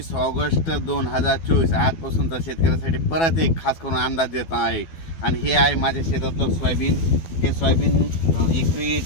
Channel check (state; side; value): late; right; 12 ms